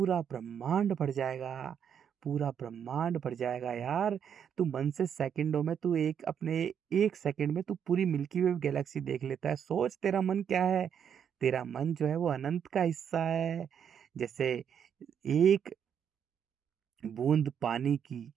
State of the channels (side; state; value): left; quieter; 8.1 dB